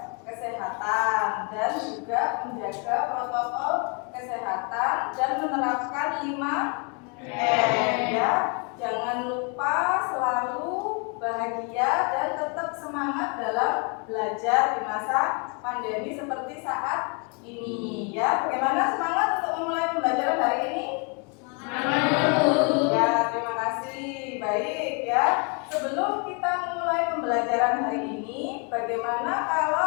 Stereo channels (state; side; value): quieter; right; 35.3 dB